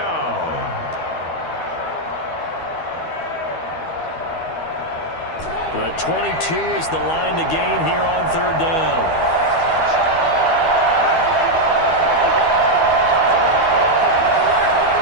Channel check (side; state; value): right; late; 12 ms